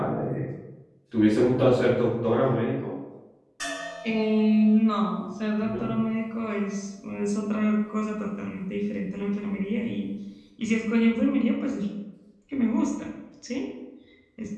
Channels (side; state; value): both; identical; correlation 1.00